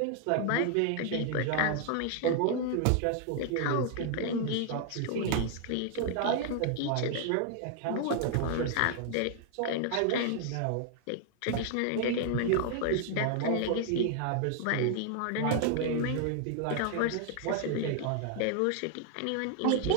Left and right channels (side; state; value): both; different; correlation 0.00